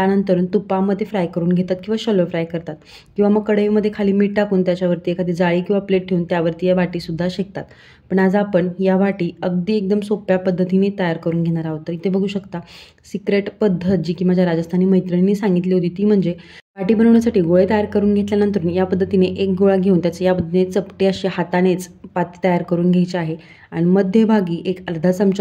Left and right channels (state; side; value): identical; both; correlation 1.00